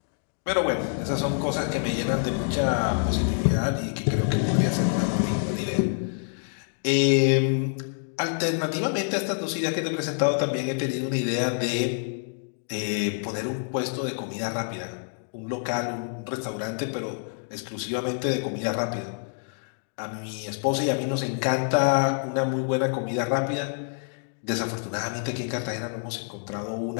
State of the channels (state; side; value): silent; right; digital silence